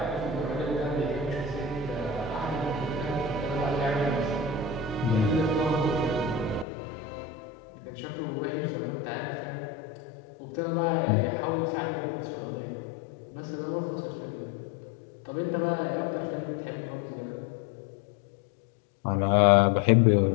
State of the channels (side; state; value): right; drops out; at 6.7 s